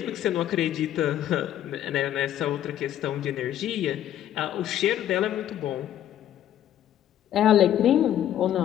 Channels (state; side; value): quieter; right; 11.4 dB